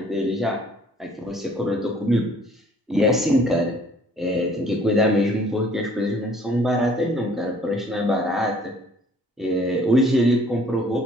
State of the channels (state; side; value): normal; both; correlation 0.57